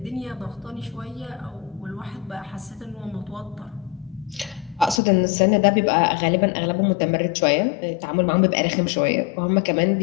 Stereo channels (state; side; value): drops out; right; at 5.0 s